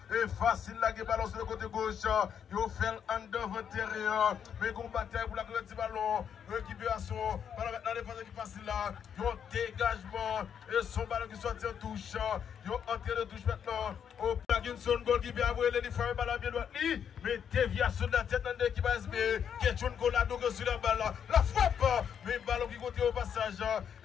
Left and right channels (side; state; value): right; quieter; 8.1 dB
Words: Et facile là, qui ballon sur le côté gauche. Il fait un devant intérieur. Mais qu'on bataille pour la petit ballon. Récupération. Ballon maintenant, défense qui facile là. Il y a un dégagement. Et son ballon qui sortit en touche. Il y a un entrée de touche maintenant. Au Parkinson, goal qui vient avoir les femmes ballon bien droit. Mais déviation de la tête dans l'équipe ASB. Question Colado sur la balle. La frappe. Mais ballon qui continue au passage.